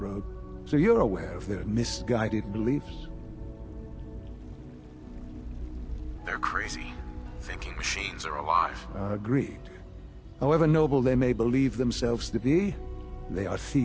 so you're aware of their misguided beliefs. They're crazy, thinking machines are alive. Agreed. However noble they may believe themselves to be, they are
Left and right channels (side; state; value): both; identical; correlation 1.00